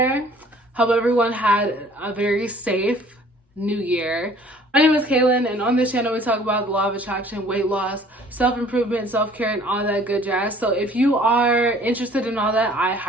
Hope everyone had a very safe New Year. My name is Kaylin, and on this channel we talk about the law of attraction, weight loss, self-improvement, self-care, and all that good jazz. So if you are interested in all that, I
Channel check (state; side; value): normal; both; correlation 0.54